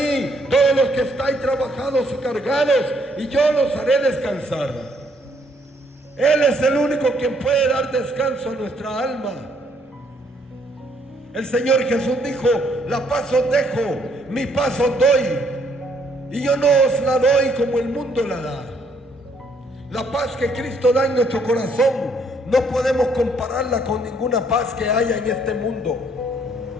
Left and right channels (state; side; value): normal; both; correlation 0.68